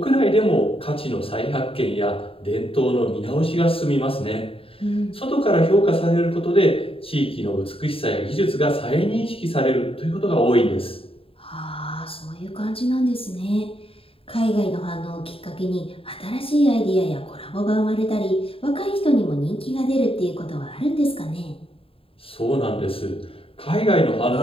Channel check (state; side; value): late; right; 0.27 ms